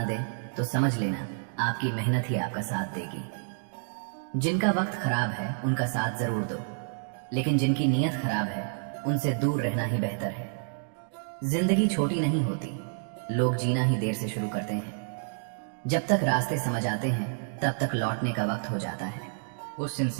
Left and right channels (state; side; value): silent; left; digital silence